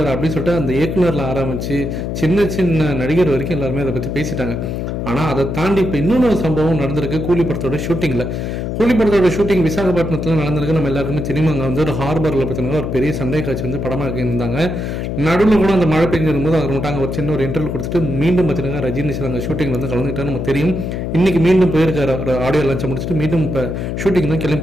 அப்படின்னு சொல்லிட்டு அந்த இயக்குனரில் ஆரம்பித்து சின்ன சின்ன நடிகர் வரைக்கும் எல்லாருமே அதை பற்றி பேசிட்டாங்க. ஆனால் அதை தாண்டி இப்போ இன்னொன்று சம்பவம் நடந்திருக்கு. கூலி படத்தோட ஷூட்டிங் விசாகப்பட்டினத்தில் நடந்திருக்கு. நம்ம எல்லாருக்குமே தெரியுமா, அங்கே வந்து ஒரு ஹார்பரில் பார்த்தீங்கன்னா ஒரு பெரிய சண்டை காட்சி வந்து படமாக இருந்தாங்க. நடுவில் கூட அந்த மழை பெஞ்சிருக்கும்போது அவர் மட்டும் அங்கே ஒரு சின்ன ஒரு இன்டர்வியூ கொடுத்துட்டு மீண்டும் பார்த்தீங்கன்னா ரஜினி சார் அங்கே ஷூட்டிங் வந்து கலந்துக்கிட்டாரு. நமக்கு தெரியும், இன்னைக்கு மீண்டும் போயிருக்காரு. ஒரு ஆடியோ லான்ச்சை முடிச்சுட்டு மீண்டும் இப்போ ஷூட்டிங் தான்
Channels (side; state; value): left; noise; hum, 3 dB below the sound